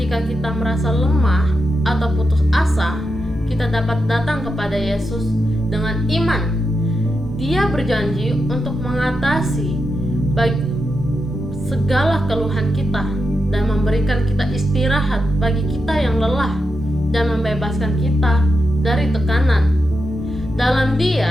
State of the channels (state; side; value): normal; both; correlation 0.86